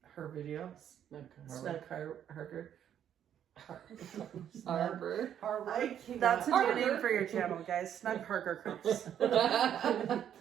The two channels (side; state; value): left; quieter; 9.7 dB